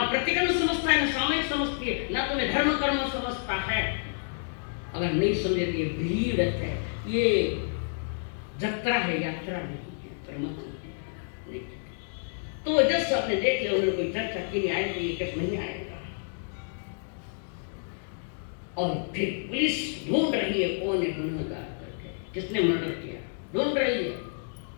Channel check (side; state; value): right; silent; digital silence